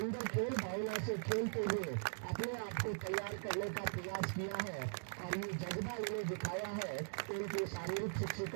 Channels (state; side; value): silent; left; digital silence